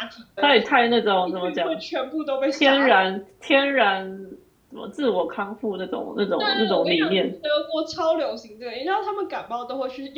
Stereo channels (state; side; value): identical; both; correlation 1.00